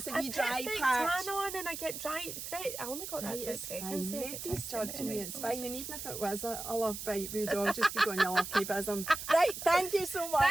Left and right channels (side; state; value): right; noise; hiss, 8 dB below the sound